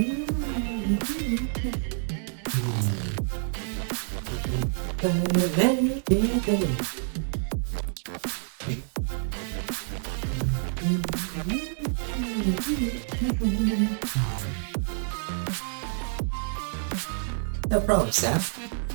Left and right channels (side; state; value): left; silent; 59 dB below the other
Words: No problem, Seth.